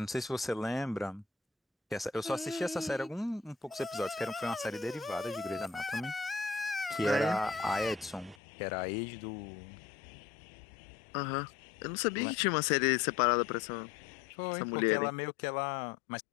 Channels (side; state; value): right; drops out; at 8.3 s